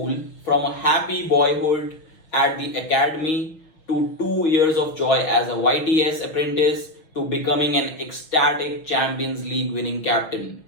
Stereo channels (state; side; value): late; right; 6.3 ms